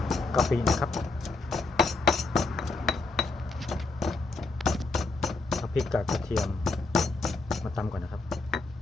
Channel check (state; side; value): quieter; right; 3.6 dB